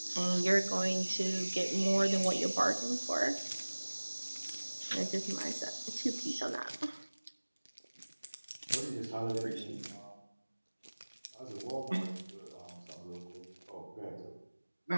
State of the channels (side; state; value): both; inverted; correlation -1.00